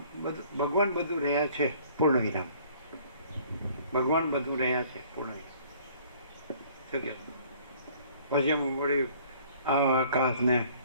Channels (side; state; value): both; inverted; correlation -0.56